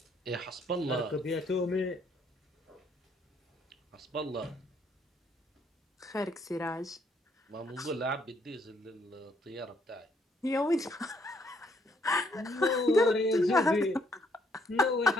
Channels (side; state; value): both; normal; correlation 0.69